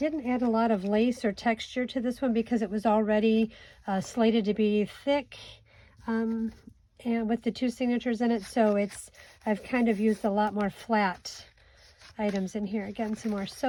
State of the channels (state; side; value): identical; both; correlation 1.00